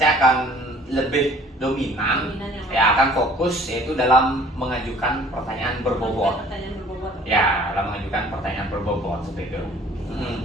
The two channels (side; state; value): both; normal; correlation 0.52